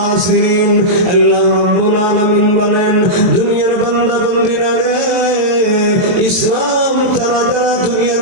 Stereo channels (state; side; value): late; left; 23 ms